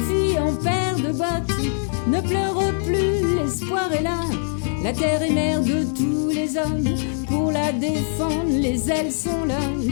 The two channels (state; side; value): silent; right; digital silence